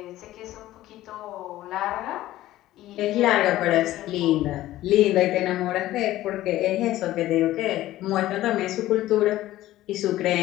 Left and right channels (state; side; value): quieter; right; 15.1 dB